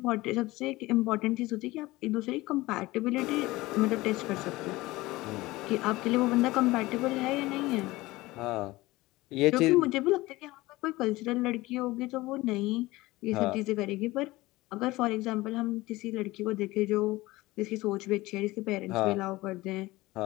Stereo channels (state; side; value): quieter; right; 19.5 dB